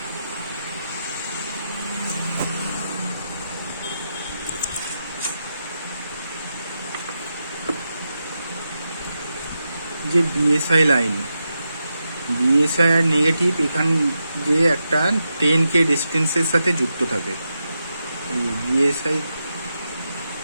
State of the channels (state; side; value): inverted; both; correlation -0.87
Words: যে বিএসআই লাইন, বিএসআই আর নেগেটিভ এখান যে একটা 10K ডিস্টেন্সের সাথে যুক্ত থাকে। এই বিএসআই